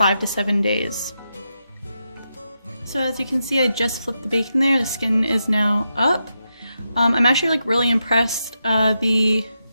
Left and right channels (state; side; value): inverted; both; correlation -0.86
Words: to 7 days. So as you can see, I just flipped the bacon there. The skin is now up. I'm actually like really impressed. The